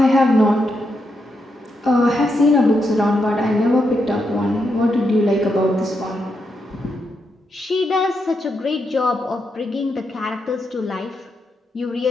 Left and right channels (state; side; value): normal; both; correlation 0.83